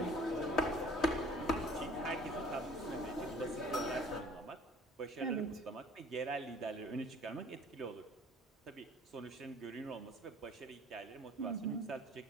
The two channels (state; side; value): normal; both; correlation 0.51